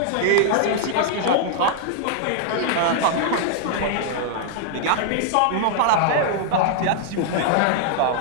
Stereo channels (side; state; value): both; different; correlation 0.00